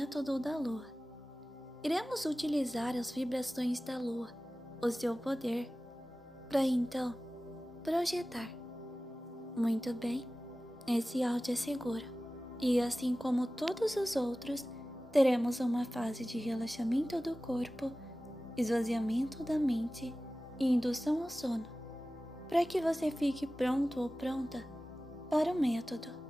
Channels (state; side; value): normal; both; correlation 0.96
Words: da Lua. Iremos utilizar as vibrações da Lua, o seu poder, para então projetar. Muito bem, esse áudio é seguro e, assim como todos os outros, teremos uma fase de relaxamento do corpo, esvaziamento da mente e indução ao sono, para que você fique pronto ou pronta para o método.